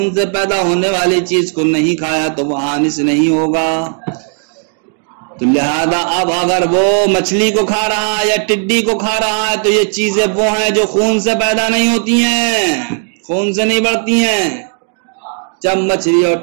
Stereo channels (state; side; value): silent; left; 55 dB below the other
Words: سے پیدا ہونے والی چیز کو نہیں کھایا تو وہ حانث نہیں ہوگا. تو لہذا اب اگر وہ مچھلی کو کھا رہا ہے یا ٹڈی کو کھا رہا ہے تو یہ چیزیں وہ ہیں جو خون سے پیدا نہیں ہوتی ہیں, خون سے نہیں بڑھتی ہیں. جب مچھلی اور